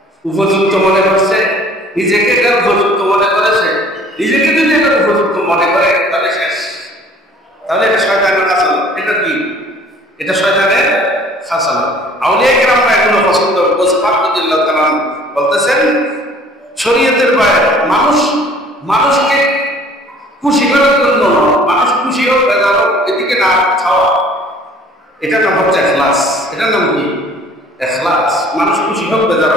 উপযুক্ত মনে করছে, নিজেকে এটা উপযুক্ত মনে করেছে, নিজেকে যদি এটা উপযুক্ত মনে করে তাহলে শেষ, তাহলে এটা শয়তানের খাসালা। এটা কি? এটা শয়তানের খাসালা। আউলিয়া কেরামরা এগুলো পছন্দ বলতেছেন শরীয়তের বাইরে মানুষকে খুশি করার জন্য, মানুষ খুশি হোক বেজার হোক এদিকে না খাওয়া, এটার নাম হচ্ছে ইখলাস। এটার নাম কি? ইখলাস। মানুষ খুশি হোক বেজার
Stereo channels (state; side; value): normal; both; correlation 0.52